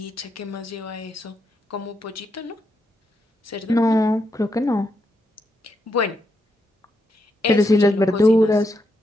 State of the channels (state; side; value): normal; both; correlation 0.81